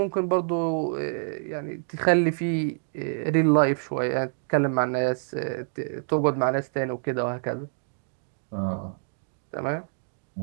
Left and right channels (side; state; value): left; silent; digital silence